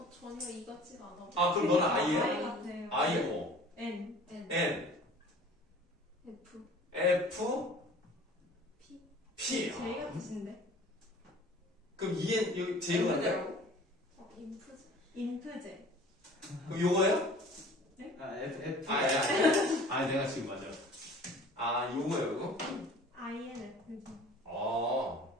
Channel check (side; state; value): both; normal; correlation 0.46